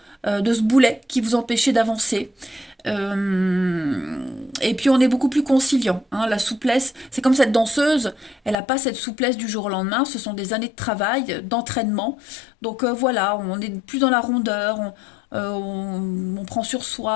de ce boulet qui vous empêchait d'avancer. Et puis on est beaucoup plus conciliant, hein. La souplesse, c'est comme cette danseuse, elle n'a pas cette souplesse du jour au lendemain, ce sont des années de travail, d'entraînement. Donc voilà, on est plus dans la rondeur, on prend sur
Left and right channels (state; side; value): drops out; right; at 8.6 s